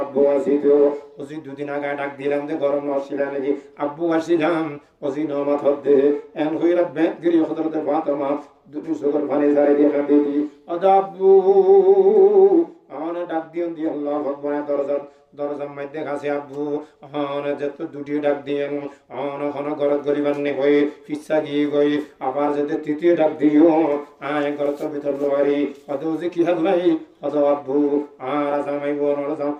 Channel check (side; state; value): both; identical; correlation 1.00